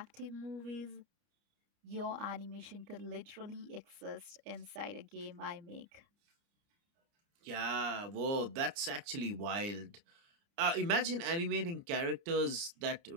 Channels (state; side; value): late; left; 29 ms